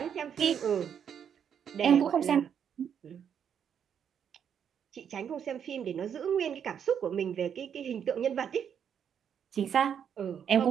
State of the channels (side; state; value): left; quieter; 8.2 dB